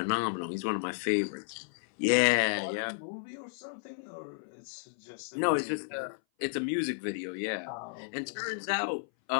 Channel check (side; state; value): right; silent; 56 dB below the other